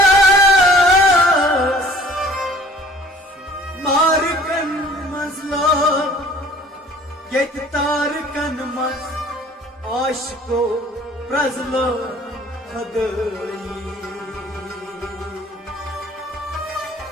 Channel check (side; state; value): both; normal; correlation 0.51